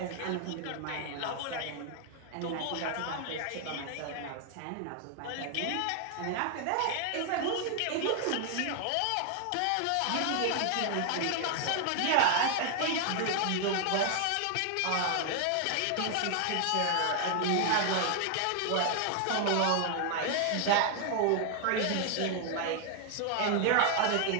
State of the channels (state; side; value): different; both; correlation 0.00